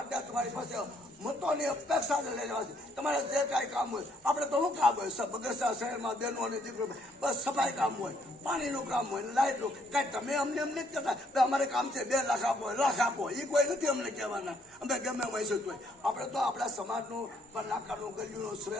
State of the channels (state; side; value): normal; both; correlation 0.69